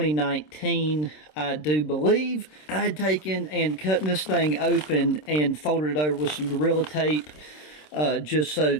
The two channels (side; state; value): right; late; 26 ms